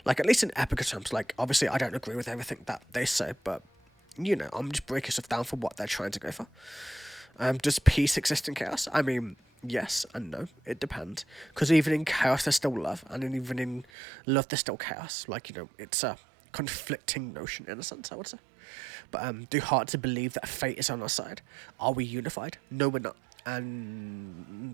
Like, at least in Epica terms, like, obviously I don't agree with everything that they say, but, you know, I'm just breaking stuff down for what they're trying to go for. Does peace exist in chaos? I mean, yes and no. It depends. Because even in chaos there's still love, and even in love there's still chaos. Like, you know, it's a conflicting notion in a sense, I would say. But do hearts believe that fate is on our side? Are we unified? No, we're not.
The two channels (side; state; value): left; drops out; at 13.9 s